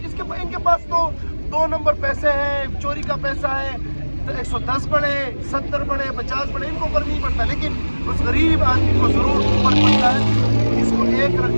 ان کے پاس تو 2 نمبر پیسے ہیں, چوری کا پیسہ ہے, 110 بڑھے, 70 بڑھے, 50 بڑھے, ان کو اوپر نہیں پڑتا. لیکن اس غریب آدمی کو ضرور اوپر پڑتا ہے. اس کو ایک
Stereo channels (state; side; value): inverted; both; correlation -1.00